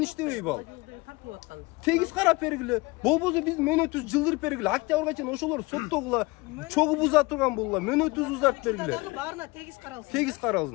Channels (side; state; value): right; quieter; 24.2 dB